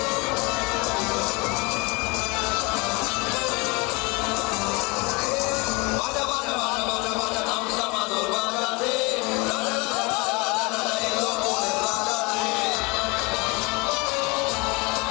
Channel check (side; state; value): right; quieter; 27.1 dB